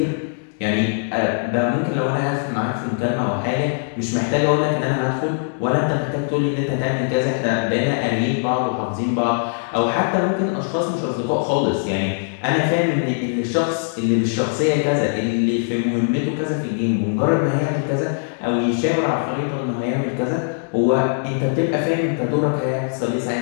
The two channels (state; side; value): silent; right; digital silence